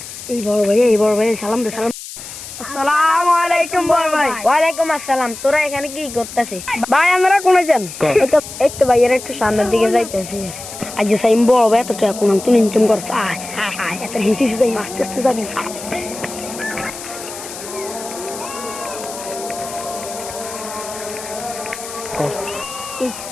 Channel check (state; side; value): noise; left; hiss, 12 dB below the sound